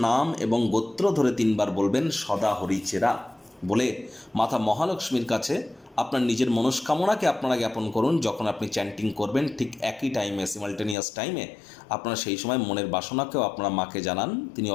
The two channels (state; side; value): drops out; right; at 11.0 s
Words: নাম এবং গোত্র ধরে 3 বার বলবেন সদা হরিচেরা বলে মাতা মহালক্ষ্মীর কাছে আপনার নিজের মনস্কামনাকে আপনারা জ্ঞাপন করুন। যখন আপনি চ্যান্টিং করবেন ঠিক একই টাইমে, সিমালটেনিয়াস টাইমে, আপনারা সেই সময় মনের বাসনাকেও আপনারা মাকে জানান, তিনি